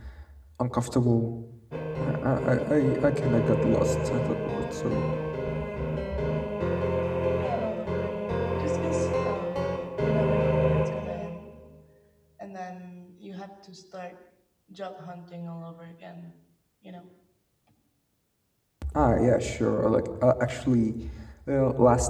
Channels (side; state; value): both; identical; correlation 1.00